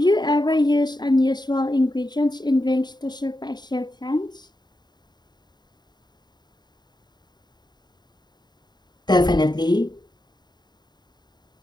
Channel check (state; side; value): late; right; 0.21 ms